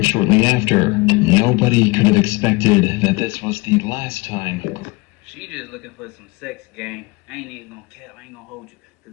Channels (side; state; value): right; quieter; 24.5 dB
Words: shortly after. Nobody could have expected that this was the last time. She just looking for some sex, gang. I ain't even gonna cap, I ain't gonna hold you.